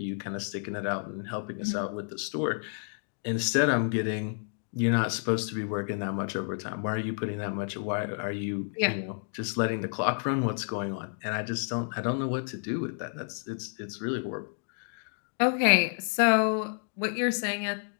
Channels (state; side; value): silent; right; 55 dB below the other